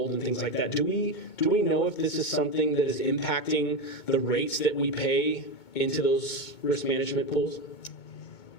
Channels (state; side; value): late; right; 2.2 ms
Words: and things like that. Do we know if this is something that is impacting the rates that we pay into those risk management pools?